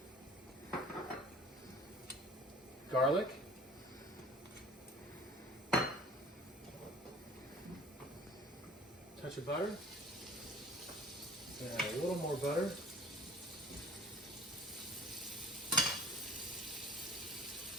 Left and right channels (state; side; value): normal; both; correlation 0.47